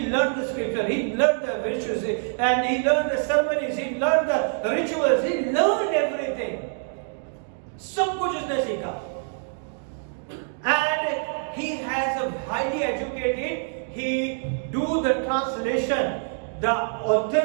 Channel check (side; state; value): left; silent; digital silence